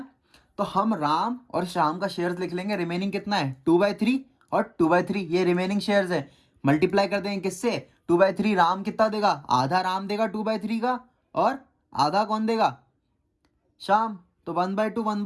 तो हम राम और श्याम का शेयर्स लिख लेंगे। रिमेनिंग कितना है? 2/3 और 2/3 ये रिमेनिंग शेयर्स है। मल्टीप्लाई कर देंगे किससे? 2/3। राम कितना देगा? आधा राम देगा 2/3 का, और आधा कौन देगा? श्याम। तो 1/2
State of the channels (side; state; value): both; identical; correlation 1.00